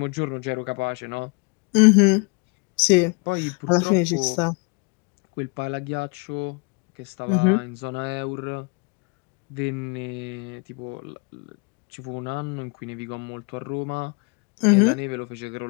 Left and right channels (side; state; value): right; quieter; 33.0 dB